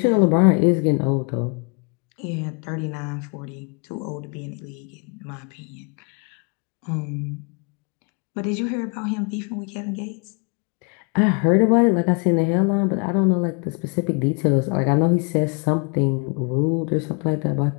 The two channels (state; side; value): quieter; right; 35.2 dB